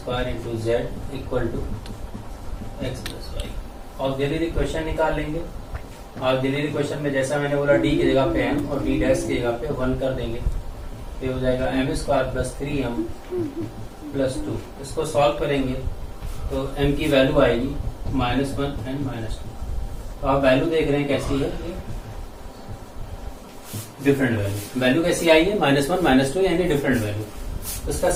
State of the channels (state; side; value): identical; both; correlation 1.00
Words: into Z equal to X plus Y. Auxiliary question निकाल लेंगे। ऑक्सिलरी क्वेश्चन में जैसा मैंने बोला डी की जगह पे m और डी डैश की जगह पे 1 कर देंगे, ये हो जाएगा m square plus 3m plus 2। इसको सॉल्व करेंगे तो m की वैल्यू आएगी -1 एंड -2। तो आप वैल्यू देख रहे हैं कैसी है, ये डिफरेंट वैल्यू कैसी आई है, -1 -2 यानी डिफरेंट वैल्यू। तो इसका